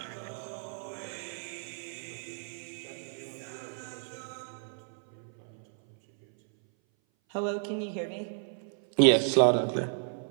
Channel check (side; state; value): left; silent; 56 dB below the other